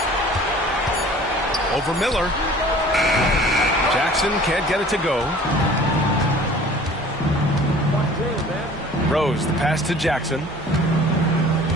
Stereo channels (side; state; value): both; normal; correlation 0.47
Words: Over Miller. Jackson can't get it to go. Rose, the pass to Jackson.